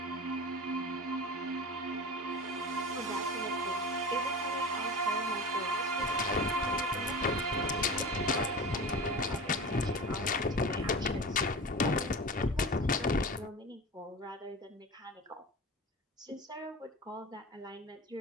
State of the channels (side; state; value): both; normal; correlation 0.31